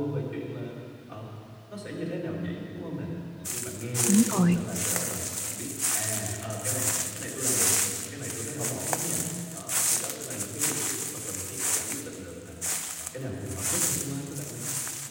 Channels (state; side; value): identical; both; correlation 1.00